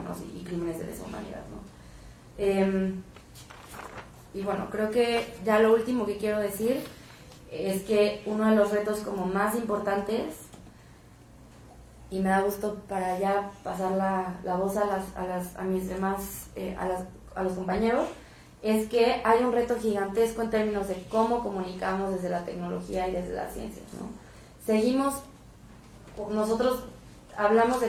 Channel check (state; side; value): identical; both; correlation 1.00